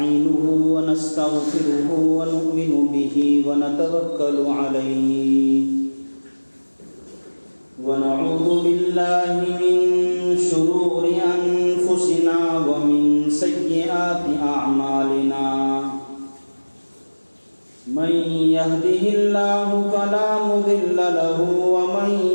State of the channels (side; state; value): both; inverted; correlation -1.00